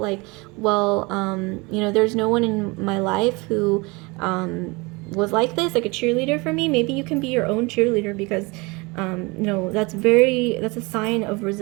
well, you know, there's no one in my life who was like this, like a cheerleader for me, maybe you can be your own cheerleader, because you know, that's a sign of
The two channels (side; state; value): left; quieter; 26.2 dB